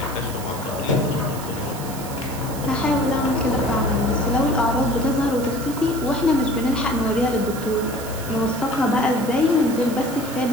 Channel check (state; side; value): noise; right; hiss, 13 dB below the sound